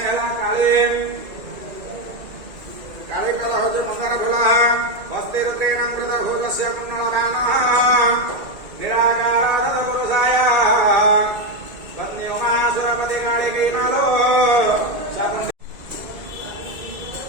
ହେଲା कालिकः हौज मंगल फुलः हस्तिरुद्रेण कृतभूतस्य कुण्डलगानः निराकारानंद पुरुषाय वन्द्योमासुरपति कालिकीमालो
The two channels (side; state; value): left; late; 2.4 ms